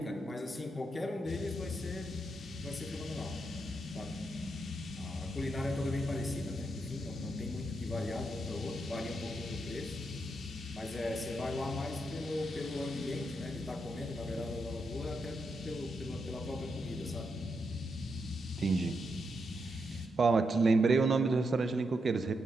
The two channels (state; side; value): normal; both; correlation 0.83